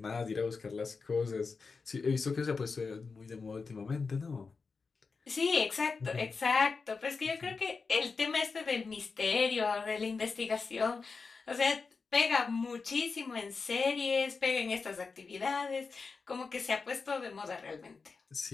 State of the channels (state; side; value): quieter; right; 4.7 dB